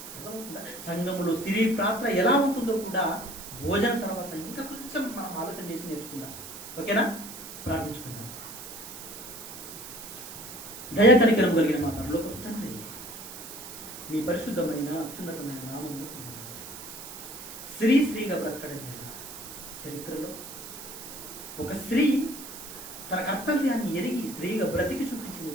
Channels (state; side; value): noise; right; hiss, 12 dB below the sound